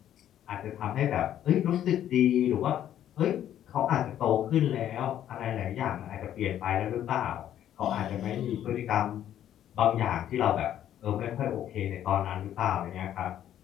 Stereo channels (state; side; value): quieter; right; 11.1 dB